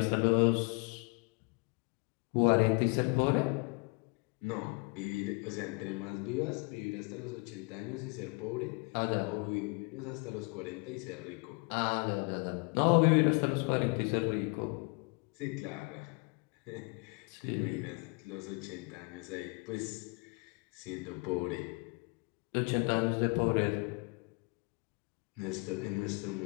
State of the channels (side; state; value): right; quieter; 31.3 dB